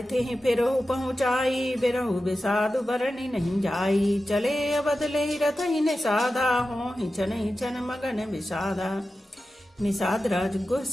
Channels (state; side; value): normal; both; correlation 0.93